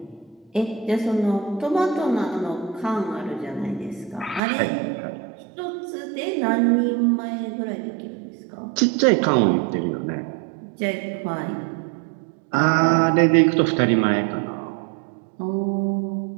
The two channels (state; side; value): drops out; left; at 4.4 s